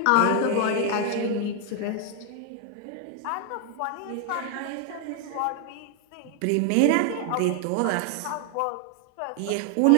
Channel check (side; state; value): both; different; correlation 0.00